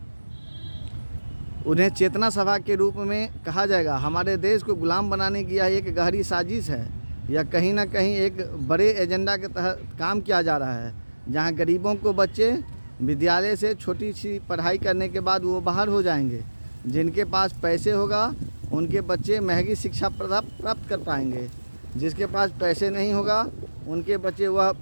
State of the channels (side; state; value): both; inverted; correlation -1.00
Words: उन्हें चेतना सभा के रूप में कहा जाएगा। हमारे देश को गुलाम बनाने की यह एक गहरी साजिश है, या कहीं ना कहीं एक बड़े एजेंडा के तहत काम किया जा रहा है, जहां गरीबों को बच्चे विद्यालय से छोटी सी पढ़ाई करने के बाद वो बाहर हो जाएंगे। जिनके पास पैसे होगा उनके बच्चे महंगी शिक्षा प्राप्त कर पाएंगे। जिसके पास पैसे नहीं होगा उनके बच्चे वह